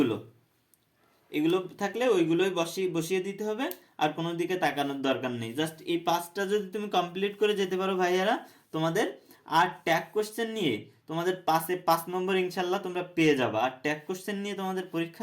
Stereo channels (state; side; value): identical; both; correlation 1.00